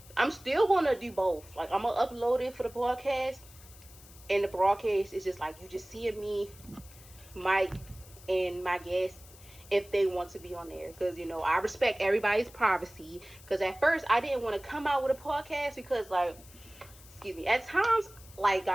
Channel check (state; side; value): noise; left; hiss, 21 dB below the sound